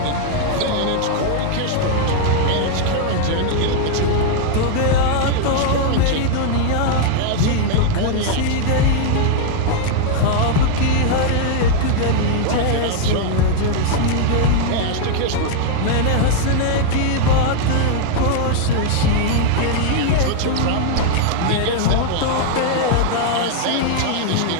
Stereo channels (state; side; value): different; both; correlation 0.00